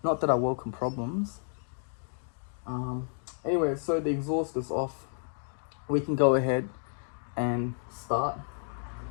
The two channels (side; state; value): right; silent; digital silence